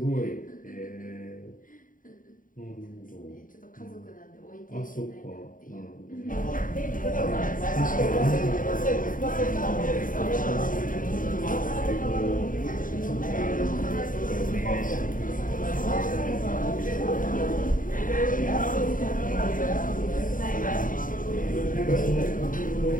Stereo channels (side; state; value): right; late; 0.39 ms